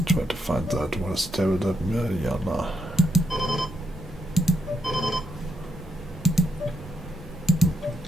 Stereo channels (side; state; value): both; normal; correlation 0.80